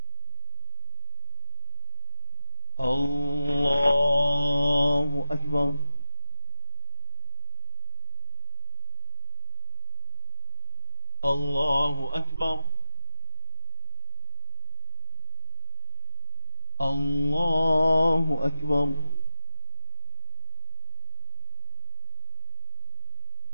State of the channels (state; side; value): inverted; both; correlation -0.98